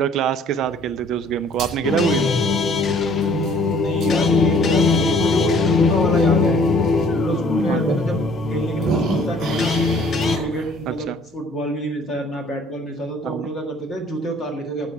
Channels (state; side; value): normal; both; correlation 0.57